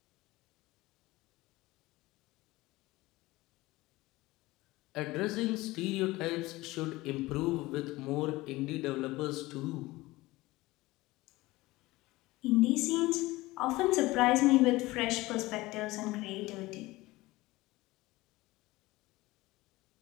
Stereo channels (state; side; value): quieter; right; 19.7 dB